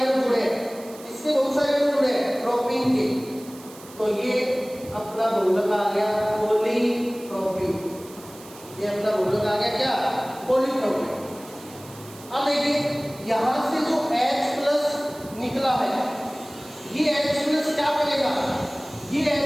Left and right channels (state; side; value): noise; right; hiss, 20 dB below the sound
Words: जुड़े हैं, इसके बहुत सारे अणु जुड़े हैं प्रोपीन के। तो ये अपना बहुलक आ गया पॉलीप्रोपीन। ये अपना बहुलक आ गया क्या? पॉलीप्रोपीन। अब देखिए यहाँ से जो H+ निकला है ये H+ क्या करेगा? ये